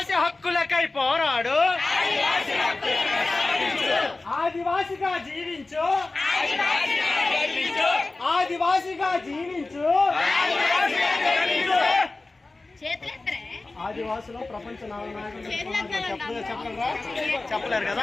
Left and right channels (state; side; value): quieter; right; 3.3 dB